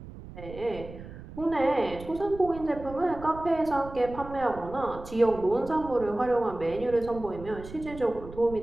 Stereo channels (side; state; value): right; noise; rumble, 14 dB below the sound